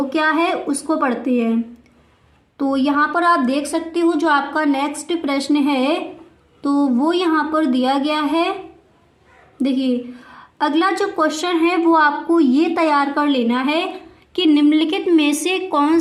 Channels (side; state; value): both; identical; correlation 1.00